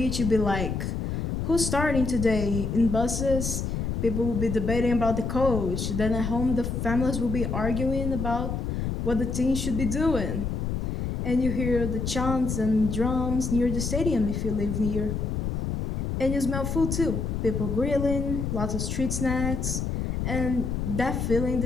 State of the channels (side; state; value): left; noise; rumble, 2 dB below the sound